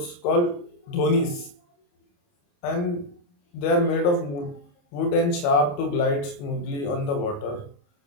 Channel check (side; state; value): right; late; 28 ms